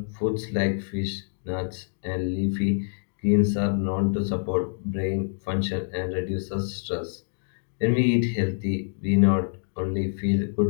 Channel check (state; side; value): silent; right; digital silence